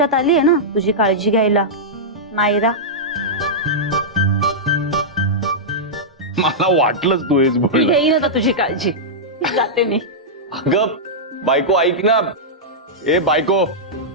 आली आहे ना तुझी काळजी घ्यायला नायरा. मला वाटलंच तू हेच बोल. घेईन आता तुझी काळजी. जाते मी. अगं बायको ऐक ना. बायको.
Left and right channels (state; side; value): normal; both; correlation -0.10